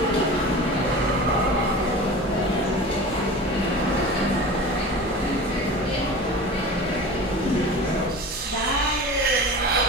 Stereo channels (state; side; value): normal; both; correlation 0.35